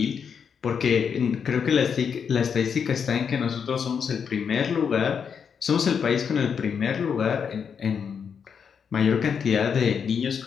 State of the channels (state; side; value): quieter; right; 6.8 dB